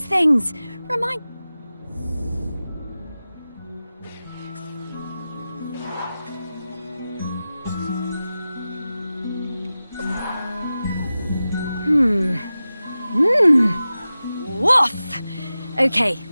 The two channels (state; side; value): inverted; both; correlation -0.95